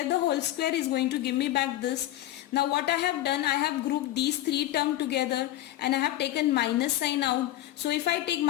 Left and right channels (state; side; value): quieter; right; 14.4 dB